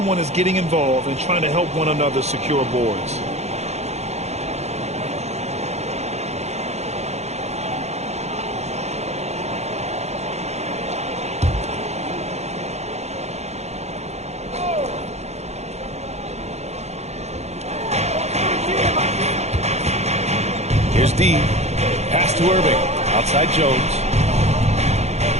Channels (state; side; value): late; left; 0.32 ms